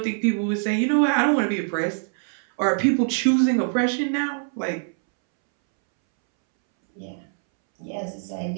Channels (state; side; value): silent; left; 63 dB below the other